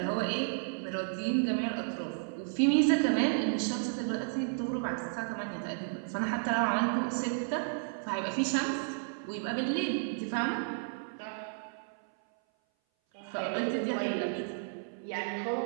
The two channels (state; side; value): silent; left; 56 dB below the other